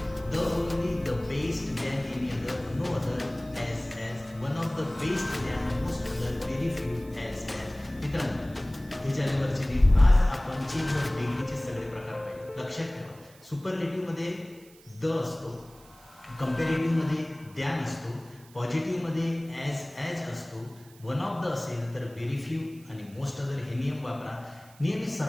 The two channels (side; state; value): right; noise; hiss, 25 dB below the sound